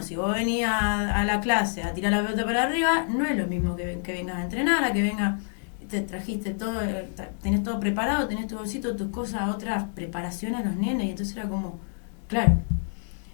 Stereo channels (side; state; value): right; silent; digital silence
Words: si vos venías a la clase a tirar la pelota para arriba, no es lo mismo que vengas a entrenar, a que vengas, te trajiste todo, tenés todo preparado, tenés tu bolsito, tus cosas, otras preparaciones a los nenes, y entonces era como, claro,